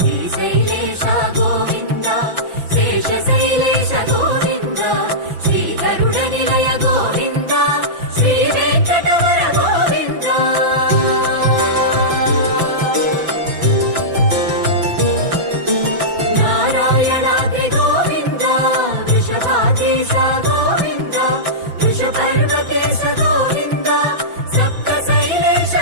గోవింద శేషశైలేశ గోవింద శ్రీ గరుడ నిలయ గోవింద శ్రీ వెంకటవర గోవింద నారాయణాద్రి గోవింద వృషభాద్రీశ గోవింద వృషపర్వతేశ గోవింద సప్త శైలేశ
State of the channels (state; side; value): late; left; 6.0 ms